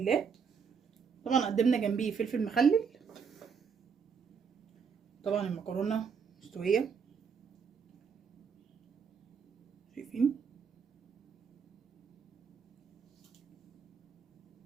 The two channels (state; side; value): quieter; left; 6.2 dB